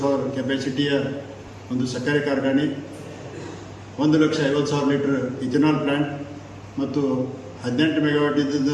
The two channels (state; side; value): identical; both; correlation 1.00